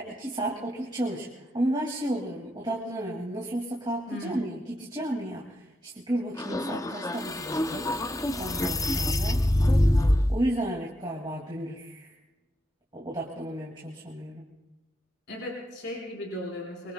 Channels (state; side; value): normal; both; correlation 0.83